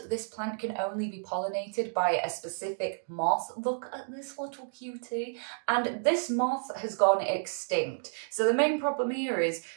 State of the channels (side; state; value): left; silent; digital silence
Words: this plant can only be pollinated by a specific moth. Look at this little cutie. And this moth has gone extinct. So the main problem here is